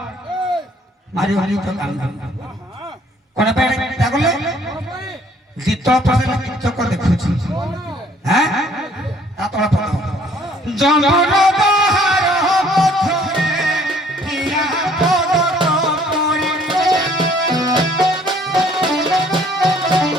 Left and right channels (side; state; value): both; normal; correlation 0.59